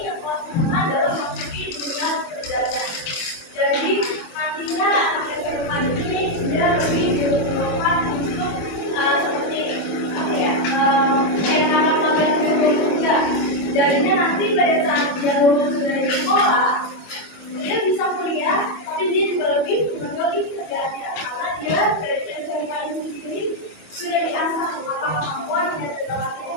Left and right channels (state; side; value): late; right; 25 ms